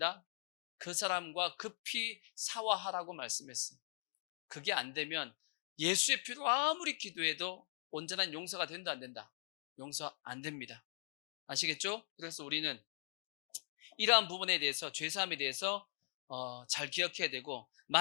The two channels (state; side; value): silent; right; digital silence